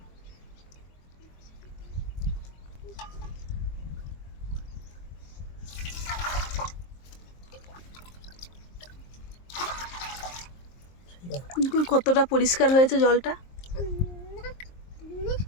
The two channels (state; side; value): late; right; 23 ms